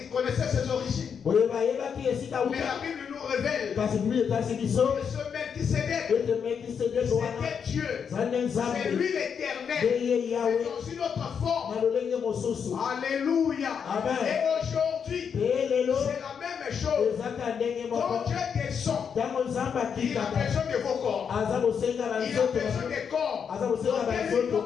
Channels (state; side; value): quieter; right; 7.0 dB